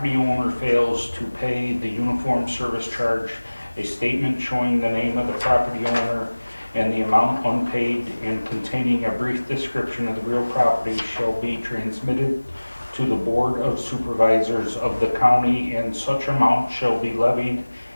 owner fails to pay the uniform service charge, a statement showing the name of the property owner and the amount unpaid and containing a brief description of the real property shall be transmitted to the Board of Supervisors of the county, and such amount shall be levied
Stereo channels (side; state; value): both; inverted; correlation -1.00